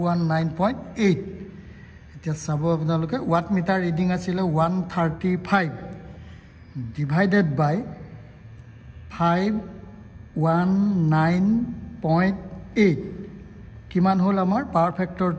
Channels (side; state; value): both; identical; correlation 1.00